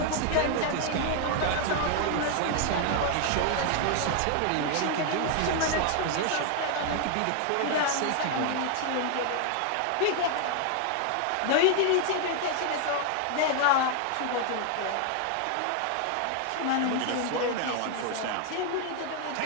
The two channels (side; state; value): both; different; correlation 0.00